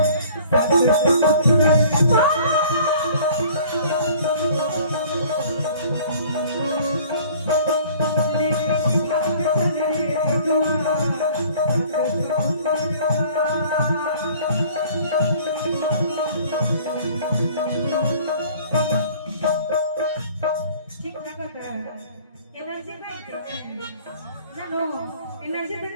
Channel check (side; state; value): both; inverted; correlation -0.50